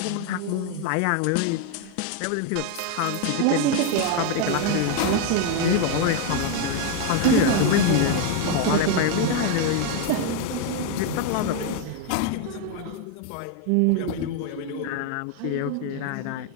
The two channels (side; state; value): both; different; correlation 0.01